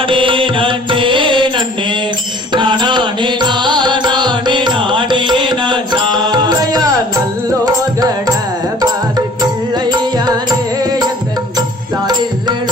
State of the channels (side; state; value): both; normal; correlation 0.52